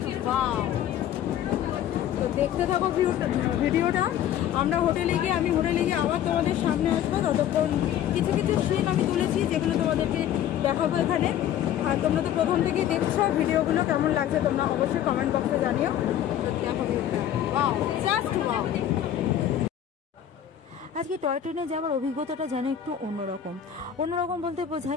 ওয়াও। তো দেখতে থাকো ভিডিওটা। আমি হোটেলে গিয়ে আবার তোমাদের সামনে আসবো। ততক্ষণ কিছু সিন আমি তুলেছি, যেগুলো তোমাদেরকে দেখাবো এখানে। আর তোমরা তো প্রথম থেকেই দেখছো, ভিডিওগুলো কেমন লাগছে তোমরা অবশ্যই কমেন্ট বক্সে জানিও। তো দেখো ভিডিওটা, ওয়াও, জাস্ট ওয়াও। আজকে টয় ট্রেনে যাওয়ার অভিজ্ঞতাটা যেন একটু অন্যরকম বলতে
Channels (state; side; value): quieter; right; 10.6 dB